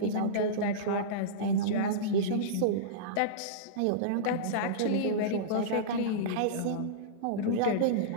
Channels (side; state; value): both; different; correlation -0.04